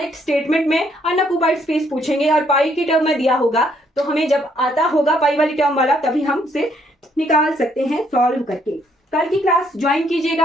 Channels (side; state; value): both; normal; correlation 0.69